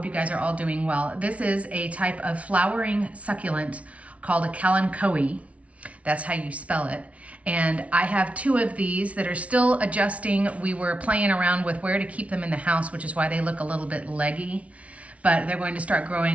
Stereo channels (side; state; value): left; late; 0.065 ms